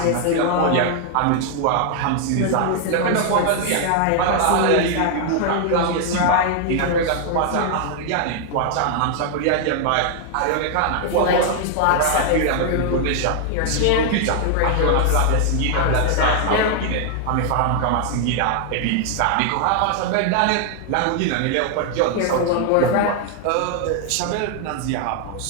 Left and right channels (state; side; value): different; both; correlation 0.00